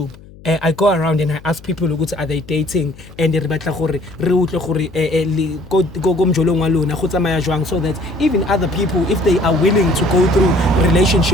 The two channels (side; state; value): left; noise; hum, 21 dB below the sound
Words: I go around and I ask people are they dating and they so that even other people, if they are willing to go through